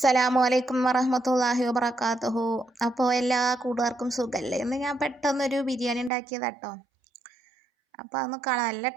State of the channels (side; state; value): left; drops out; at 6.1 s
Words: അലൈക്കും വറഹ്മത്തുള്ളാഹി വബറകാതുഹു. അപ്പോൾ എല്ലാ കൂട്ടുകാർക്കും സുഖമല്ലേ? ഇന്ന് ഞാൻ പെട്ടെന്നൊരു ബിരിയാണി ഉണ്ടാക്കിയതാട്ടോ. അപ്പോൾ അതൊന്ന് കാണാൻ നല്ല